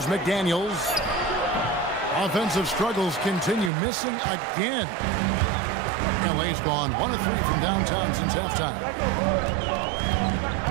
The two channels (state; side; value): drops out; left; at 3.7 s